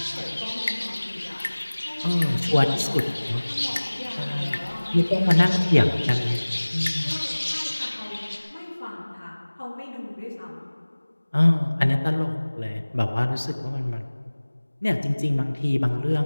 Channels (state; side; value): inverted; both; correlation -1.00